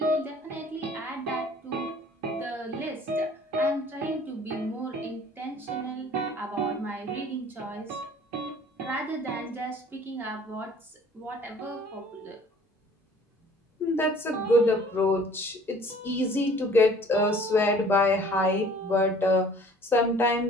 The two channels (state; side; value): normal; both; correlation 0.52